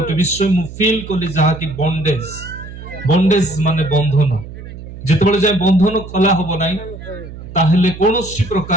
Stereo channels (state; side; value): noise; right; hum, 13 dB below the sound